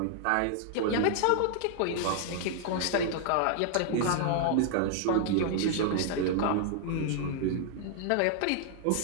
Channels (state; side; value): different; both; correlation 0.00